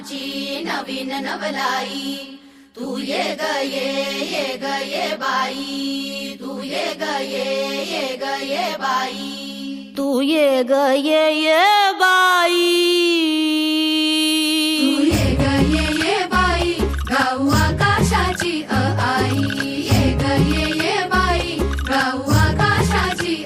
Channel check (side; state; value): both; identical; correlation 1.00